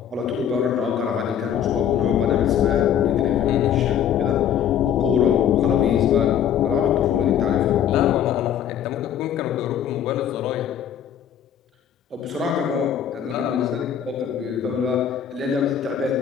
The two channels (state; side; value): quieter; right; 9.3 dB